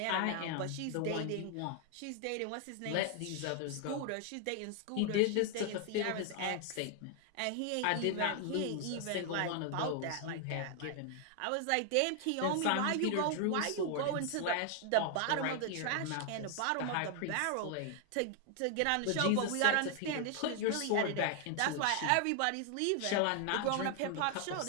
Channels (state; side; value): different; both; correlation 0.00